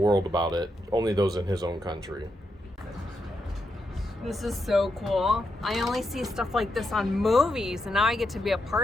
world about it. Only those in his own country. This is so cool. I only see stuff like this on movies, and now I get to be a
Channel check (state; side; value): normal; both; correlation 0.83